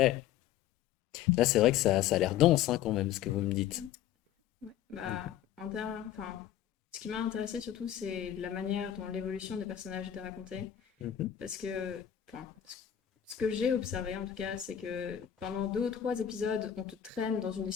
là, c'est vrai que ça a l'air dense, hein, quand même, ce que vous me dites. Ouais, bah, Mhm. enfin, ce qui m'a intéressé surtout, c'est la manière dont l'évolution des personnages était racontée. Mhm. Parce que, enfin, ce que j'ai observé en tout cas, c'est que pendant 2 ou 3 épisodes, on te traîne dans une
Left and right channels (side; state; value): right; quieter; 10.8 dB